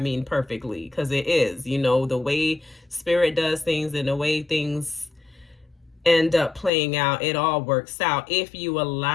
perfectly, because it is, the way spirit does things and the way things end up playing out, it all works out if you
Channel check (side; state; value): right; drops out; at 6.7 s